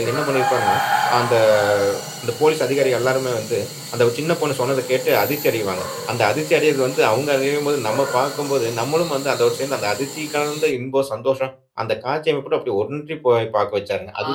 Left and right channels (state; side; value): identical; both; correlation 1.00